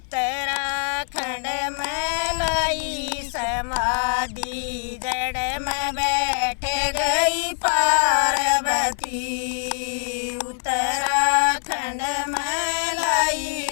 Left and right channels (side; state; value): right; silent; digital silence